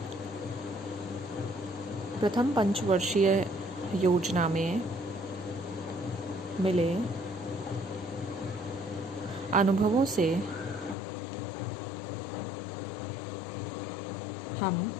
प्रथम पंचवर्षीय योजना में मिले अनुभवों से हम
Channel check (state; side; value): drops out; right; at 11.0 s